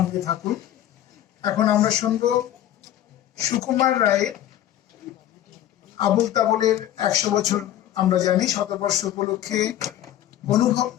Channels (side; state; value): right; quieter; 12.2 dB